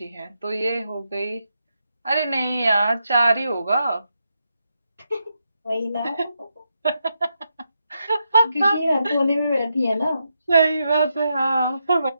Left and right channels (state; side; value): inverted; both; correlation -0.84